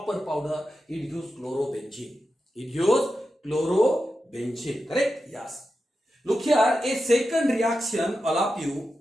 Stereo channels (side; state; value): both; normal; correlation 0.90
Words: powder, it gives chlorobenzene. It gives chlorobenzene. Correct? Yes. Look here, a second reaction, all of you,